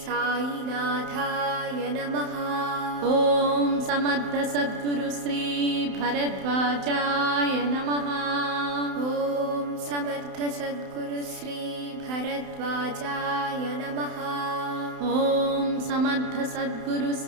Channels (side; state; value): left; late; 31 ms